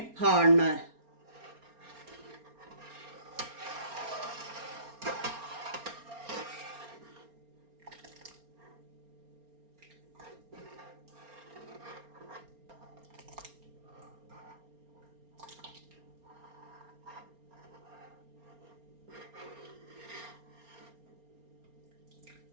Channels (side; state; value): left; late; 4.3 ms